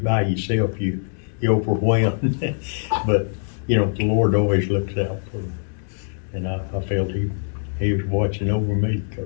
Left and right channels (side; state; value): right; silent; digital silence